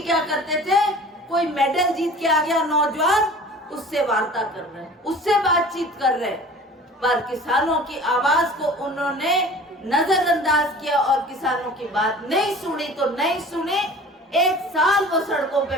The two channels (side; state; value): both; normal; correlation 0.43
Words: क्या करते थे, कोई मेडल जीत के आ गया नौजवान, उससे वार्ता कर रहे हैं, उससे बातचीत कर रहे हैं, पर किसानों की आवाज को उन्होंने नजरअंदाज किया और किसानों की बात नहीं सुनी तो नहीं सुनी। 1 साल वो सड़कों